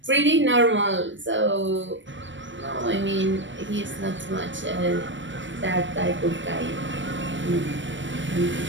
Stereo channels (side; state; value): left; late; 0.55 ms